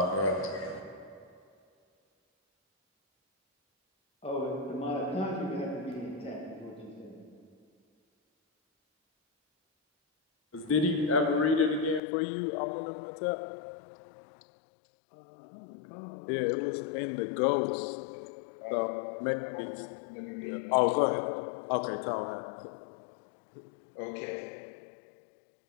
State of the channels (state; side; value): drops out; right; at 12.0 s